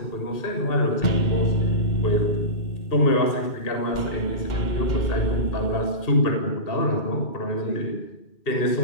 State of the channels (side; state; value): right; late; 2.1 ms